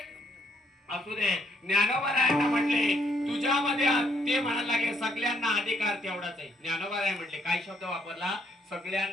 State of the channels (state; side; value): normal; both; correlation 0.71